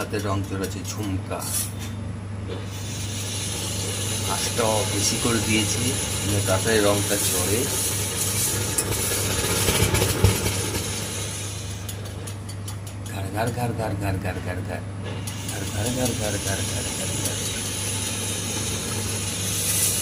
রং চড়াচ্ছে। ঝুমকা আঁচটা বেশি করে দিয়েছি, তাড়াতাড়ি রংটা চড়ে। ঘর ঘর ঘর ঘর ঘর ঘর ঘর ঘর ঘর ঘর ঘর ঘর ঘর ঘর ঘর।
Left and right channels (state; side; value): identical; both; correlation 1.00